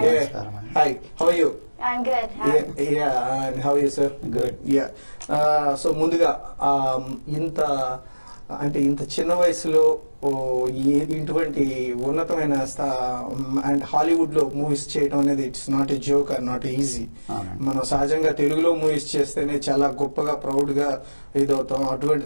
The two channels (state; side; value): inverted; both; correlation -1.00